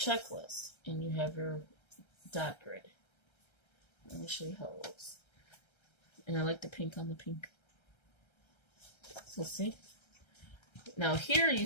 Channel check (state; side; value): late; right; 1.3 ms